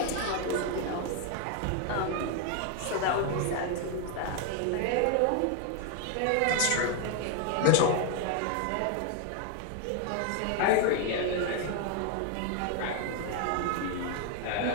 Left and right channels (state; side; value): different; both; correlation 0.01